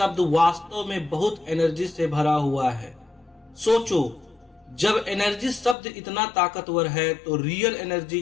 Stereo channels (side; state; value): right; drops out; at 5.8 s